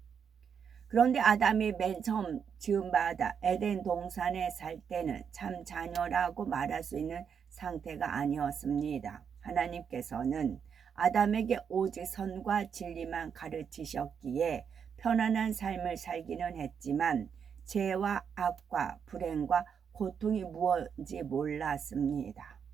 그런데 아담이 맨 처음 지음받아 에덴 동산에 살 때는 참 자녀라고 말할 수 있는 상태가 아니었습니다. 하나님께서는 아담에게 오직 선과 진리만 가르치셨기에 편안한 삶을 살기는 했지만 죄와 악과 불행과 고통이 무엇인지 몰랐습니다.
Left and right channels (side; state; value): left; quieter; 7.1 dB